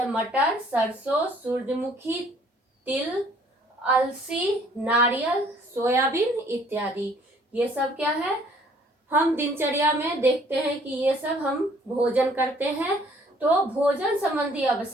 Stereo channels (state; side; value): normal; both; correlation 0.58